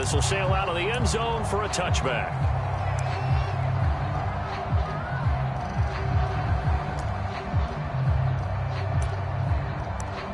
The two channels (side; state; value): both; identical; correlation 1.00